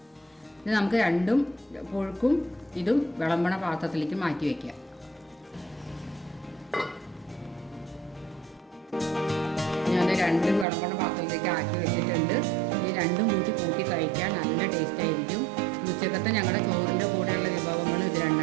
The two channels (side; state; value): left; drops out; at 10.7 s